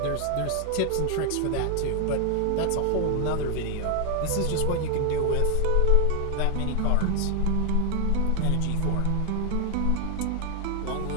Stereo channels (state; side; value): different; both; correlation 0.00